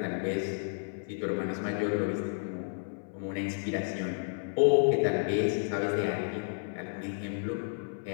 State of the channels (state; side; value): silent; right; 57 dB below the other